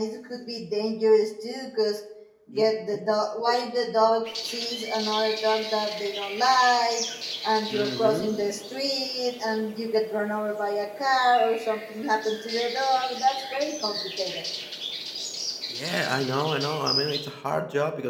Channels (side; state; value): both; identical; correlation 1.00